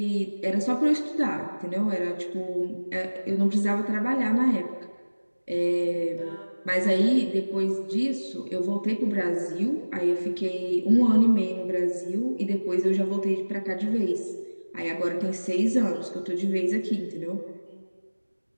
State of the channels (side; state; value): both; inverted; correlation -1.00